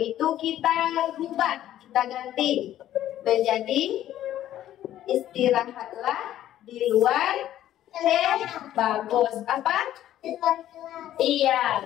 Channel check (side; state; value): right; quieter; 12.4 dB